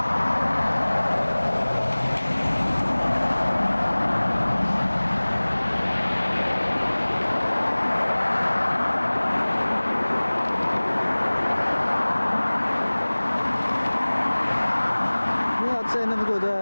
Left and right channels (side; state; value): both; inverted; correlation -1.00